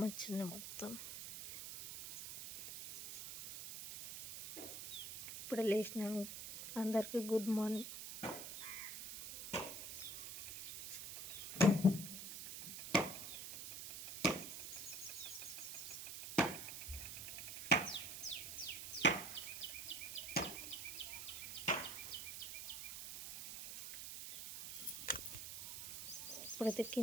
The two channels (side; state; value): right; noise; hiss, 7 dB below the sound